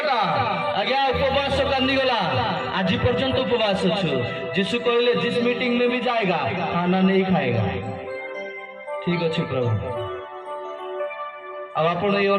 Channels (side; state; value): both; identical; correlation 1.00